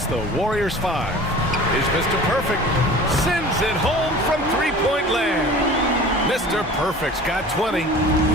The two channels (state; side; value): normal; both; correlation 0.41